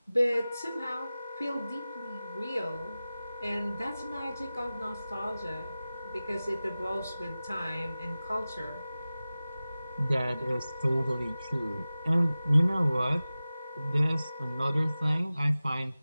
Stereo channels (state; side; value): inverted; both; correlation -0.96